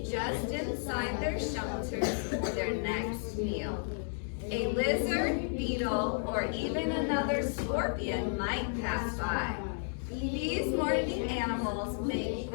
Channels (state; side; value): silent; right; 56 dB below the other